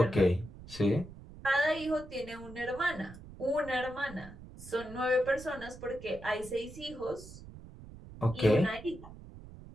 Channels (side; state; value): right; noise; rumble, 16 dB below the sound